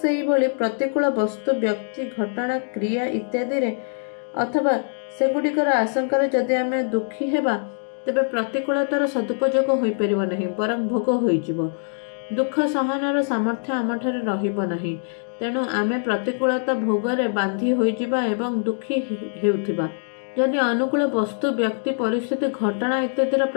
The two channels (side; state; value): right; silent; 63 dB below the other